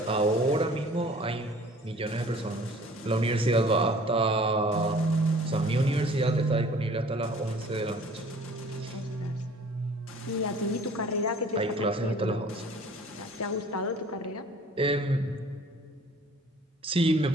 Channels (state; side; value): normal; both; correlation 0.50